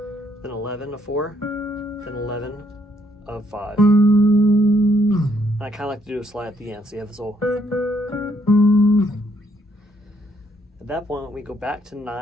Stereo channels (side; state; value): both; normal; correlation 0.71